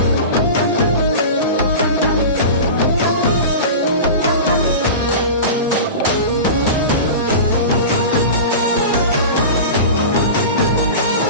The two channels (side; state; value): both; inverted; correlation -0.30